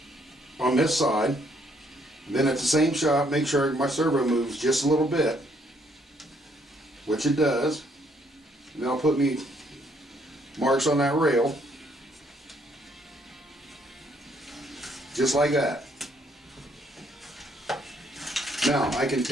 on this side. And then at the same shot, make sure my servo moves just a little bit, which it does. And then I'll put me marks on that rail, just like that. Now I can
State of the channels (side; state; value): both; normal; correlation 0.69